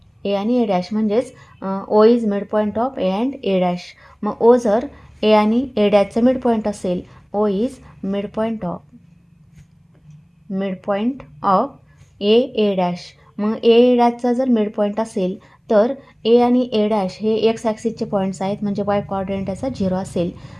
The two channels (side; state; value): both; identical; correlation 1.00